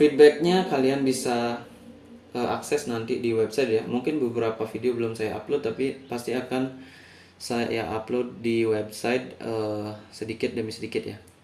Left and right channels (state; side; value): identical; both; correlation 1.00